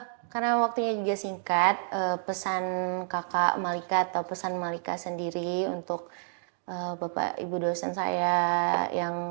Karena waktunya juga singkat, pesan kakak Malika atau pesan Malika sendiri untuk Bapak Ibu dosen saya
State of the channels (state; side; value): silent; left; digital silence